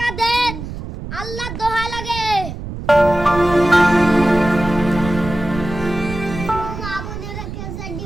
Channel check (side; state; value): right; noise; rumble, 9 dB below the sound